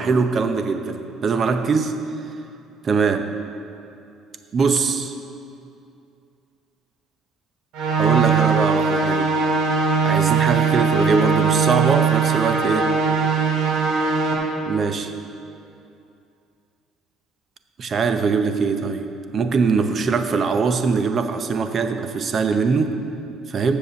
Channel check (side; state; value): left; quieter; 4.7 dB